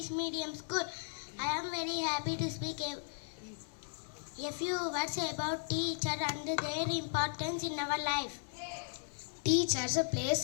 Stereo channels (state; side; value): silent; right; digital silence